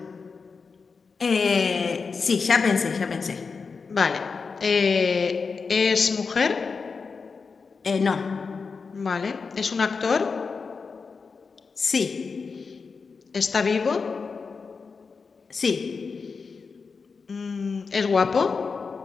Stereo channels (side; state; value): right; quieter; 5.0 dB